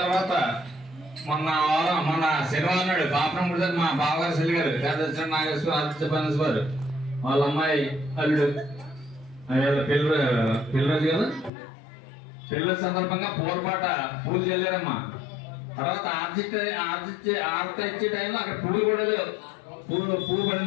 మొన్న శనివారం నాడు పాపం మా బావగారు సెల్లి గారు పెద్ద నాగేశ్వర ఆదిత్య పనస్వారు వాళ్ళ అమ్మాయి అల్లుడు పిల్లరోజు కదా పిల్లల సందర్భంగా పూలపాట పూలు చల్లారమ్మా. తర్వాత ఆర్త ఇచ్చే టైంలో అక్కడ పూలు కూడా లేవు, పూలు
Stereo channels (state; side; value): drops out; right; at 11.5 s